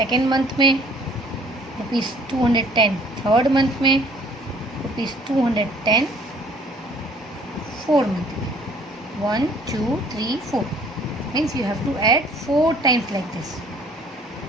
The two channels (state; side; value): normal; both; correlation 0.56